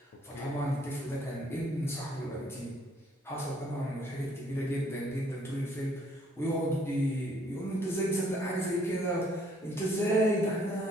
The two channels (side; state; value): both; normal; correlation 0.64